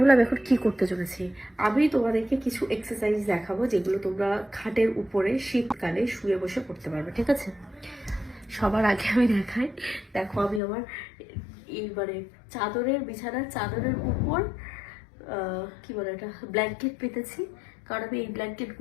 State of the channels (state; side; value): drops out; right; at 10.6 s